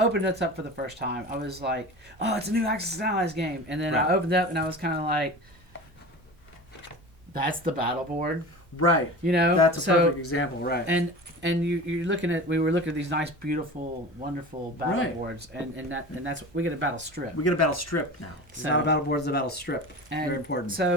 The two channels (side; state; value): both; normal; correlation 0.34